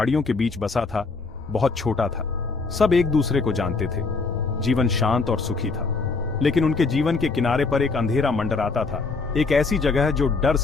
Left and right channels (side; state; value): right; quieter; 4.1 dB